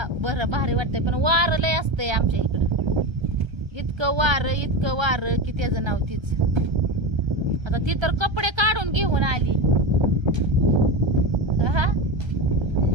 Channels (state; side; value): late; left; 1.3 ms